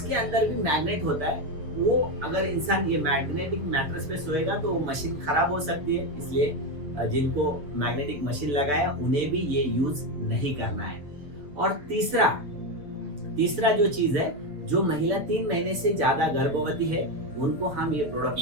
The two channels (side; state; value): left; late; 6.5 ms